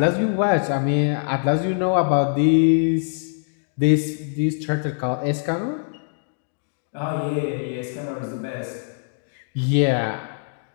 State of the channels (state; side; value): silent; right; digital silence